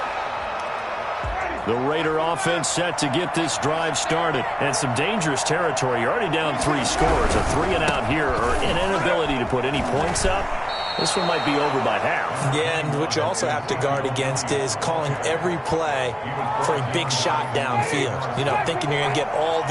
The Raider offense set to get this drive started. And some dangerous territory. You're already down 3 scores. A 3-and-out here or an inability to put any points up. This one might be over by half. Yeah, and what you also have to guard against is calling every play for a big shot downfield. You know, thinking you're going to get all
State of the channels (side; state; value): both; identical; correlation 1.00